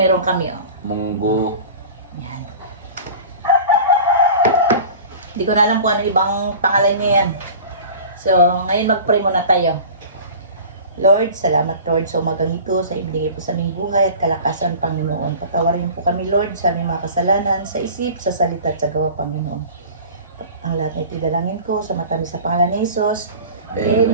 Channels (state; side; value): inverted; both; correlation -0.39